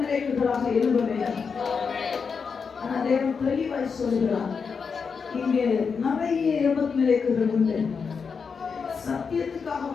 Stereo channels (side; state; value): right; quieter; 5.7 dB